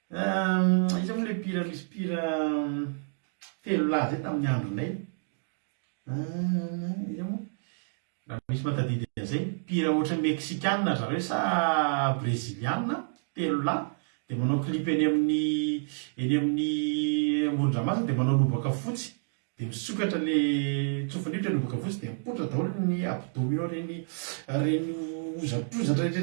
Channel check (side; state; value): left; silent; digital silence